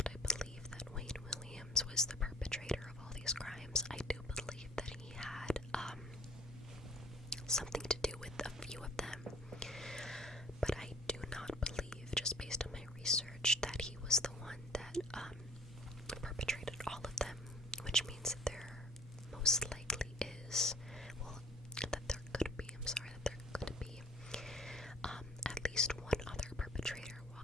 I believe that Wayne Williams was the perpetrator of all these crimes. I do believe that he had something to do with a few of them, but I do not believe, just based on my research, that he was the one that perpetrated all of them, which means that there most likely is, that there could be at least one other perpetrator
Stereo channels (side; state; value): both; normal; correlation 0.53